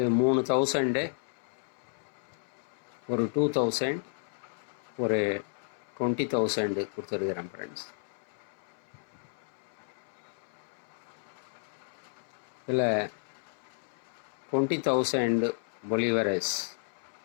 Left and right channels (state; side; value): silent; right; 56 dB below the other